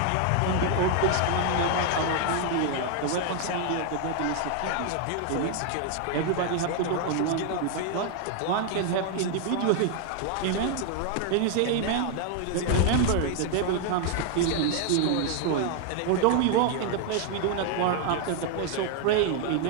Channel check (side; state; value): both; different; correlation 0.00